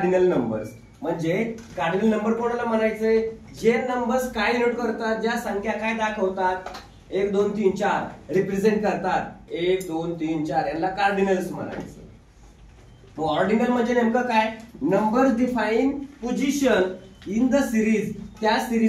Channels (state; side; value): identical; both; correlation 1.00